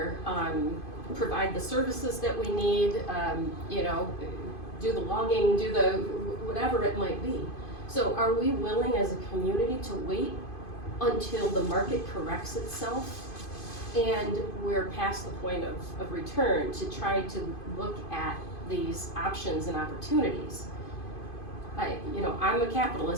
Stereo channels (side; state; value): right; late; 2.5 ms